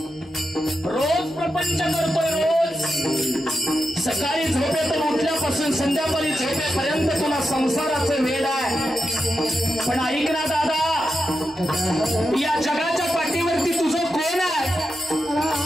रोज प्रपंच करतोय, रोज सकाळी झोपेतून उठल्यापासून संध्याकाळी झोपेपर्यंत तुला संसाराचं वेळ आहे. पण ऐक ना दादा, या जगाच्या पाठीवरती तुझं कोण आहे?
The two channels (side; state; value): both; normal; correlation 0.88